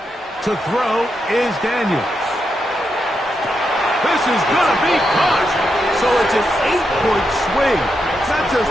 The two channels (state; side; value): normal; both; correlation 0.84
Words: throw is Daniels. This is going to be caught. So it's an 8-point swing. Not just